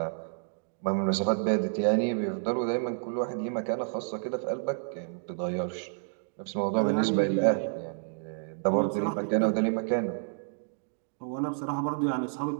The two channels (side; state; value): left; silent; digital silence